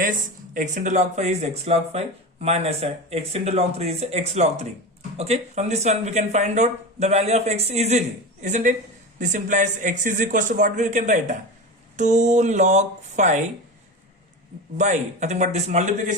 x into log 5 is x log 5 minus x into log 3 is x log 3. Okay, from this one we can find out the value of x easily, isn't it? This implies x is equals to what we can write? 2 log 5 by nothing but this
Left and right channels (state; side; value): normal; both; correlation 0.24